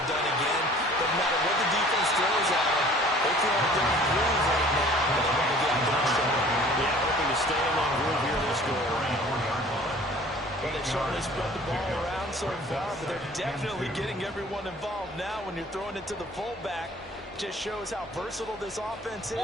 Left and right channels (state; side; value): normal; both; correlation 0.50